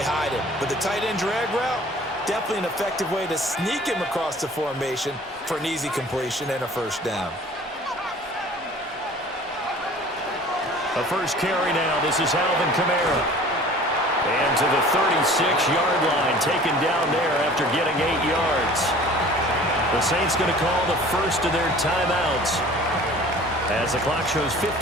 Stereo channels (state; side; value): normal; both; correlation 0.47